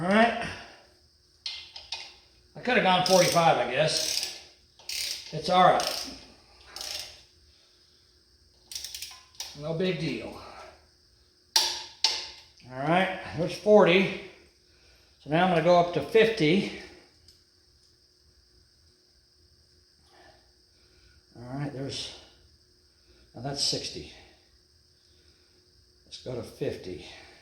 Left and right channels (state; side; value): identical; both; correlation 1.00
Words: right. I could have gone 45, I guess. It's all right. No big deal. All right, there's 40. So now I'm going to go up to 50. All right, now that's 60. Let's go to 50.